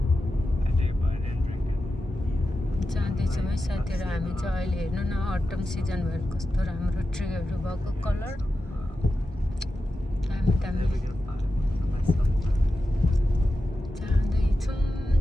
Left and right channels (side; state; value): both; normal; correlation 0.92